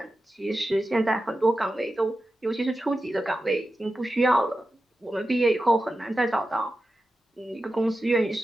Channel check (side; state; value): both; normal; correlation 0.92